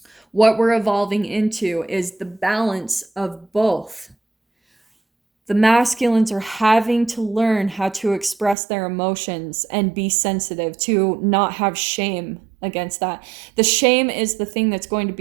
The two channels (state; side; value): drops out; left; at 8.6 s